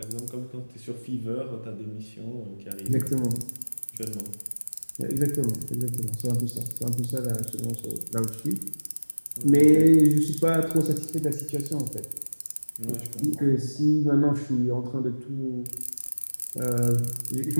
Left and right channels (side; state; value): both; inverted; correlation -1.00